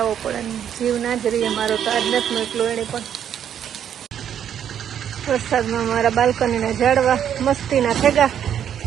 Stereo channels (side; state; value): left; quieter; 9.3 dB